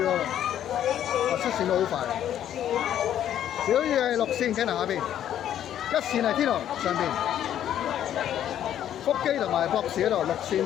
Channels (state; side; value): quieter; right; 10.7 dB